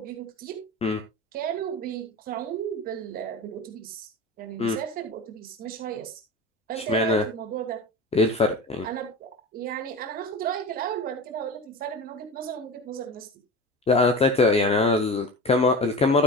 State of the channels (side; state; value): both; normal; correlation 0.30